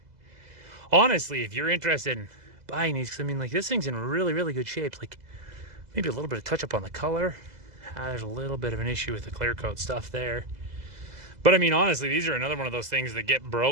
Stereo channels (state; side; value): late; left; 2.0 ms